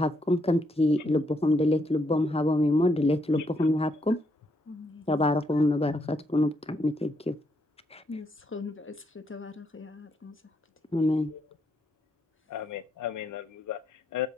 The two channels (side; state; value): both; normal; correlation 0.76